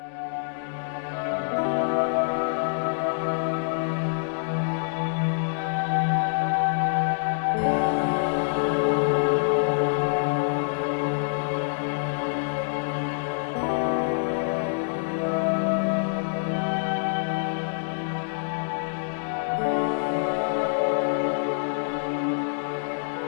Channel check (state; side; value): silent; right; digital silence